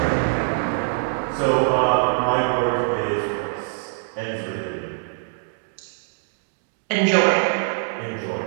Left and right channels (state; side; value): silent; left; digital silence